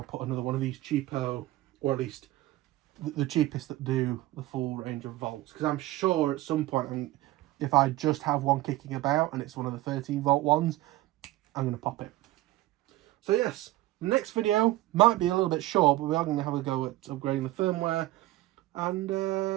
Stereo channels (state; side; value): quieter; left; 17.1 dB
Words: put another one of these cheapo, or at least the cheapest that do the full range of volts, because I'm sure at some point, if I just have one kicking about and it's one of the 13 volt ones, I'm going to pop it. So yes, next video might be a little bit short, but we are going to have a go at upgrading the firmware.